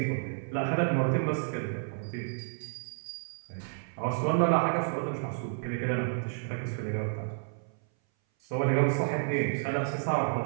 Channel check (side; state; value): left; silent; 57 dB below the other